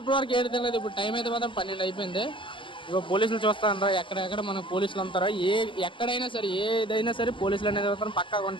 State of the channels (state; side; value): late; right; 0.25 ms